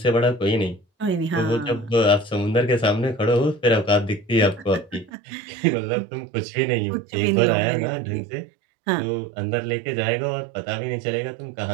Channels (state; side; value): drops out; left; at 5.1 s